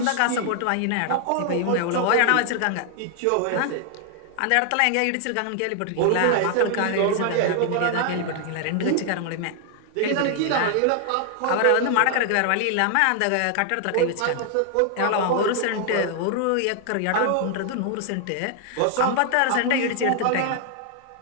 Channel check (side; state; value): both; different; correlation 0.00